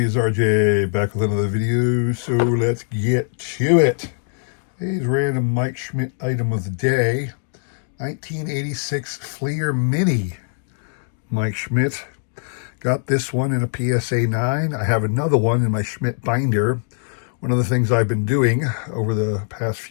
It's RJ back with another video. So let's get to it. Today's random Mike Schmidt item of the day: 1986 Fleer Mini. Mike Schmidt. Got this one in a PSA 9. I have another one in my Schmidt binder. One of the things I've been doing over the past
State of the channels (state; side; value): silent; right; digital silence